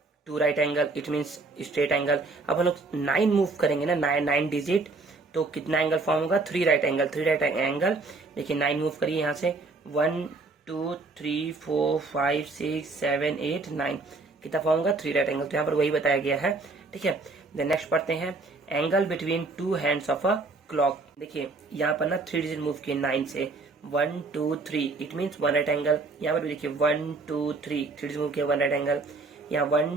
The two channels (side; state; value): left; quieter; 3.6 dB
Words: 2 right angle, it means straight angle. अब हम लोग 9 मूव करेंगे ना, 9 डिजिट, तो कितना एंगल फॉर्म होगा 3 राइट एंगल, 3 राइट एंगल। देखिए 9 मूव करिए यहाँ से, 1 2 3 4 5 6 7 8 9, कितना फॉर्म होगा 3 राइट एंगल, तो यहाँ पर वही बताया गया है। ठीक है, देन नेक्स्ट पढ़ते हैं, angle between 2 hands of a clock. देखिए यहाँ पर ना 3 डिजिट मूव किए 9 से, 1 2 3, इट मीन्स 1 राइट एंगल। यहाँ पर भी देखिए 1 2 3 डिजिट मूव किया 1 राइट एंगल, यहाँ